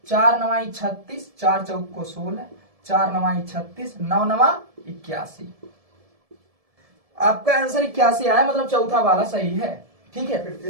4 9 36, 4 चौक को 16, 4 9 36, 9 9 81। आपका आंसर 81 आया, मतलब चौथा वाला सही है। ठीक है, फिर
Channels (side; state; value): left; late; 1.7 ms